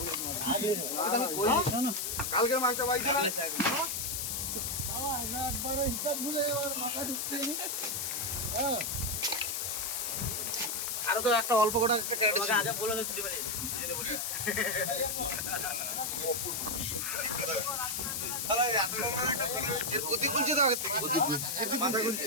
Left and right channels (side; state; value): left; noise; hiss, 1 dB below the sound